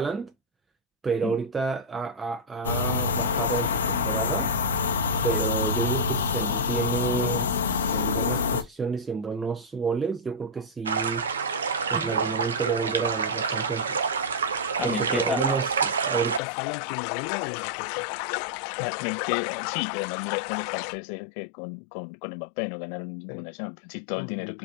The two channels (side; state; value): right; drops out; at 16.4 s